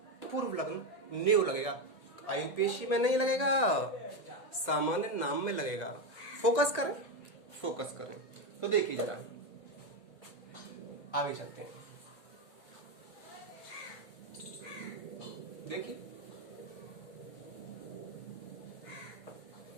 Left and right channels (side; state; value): right; late; 1.9 ms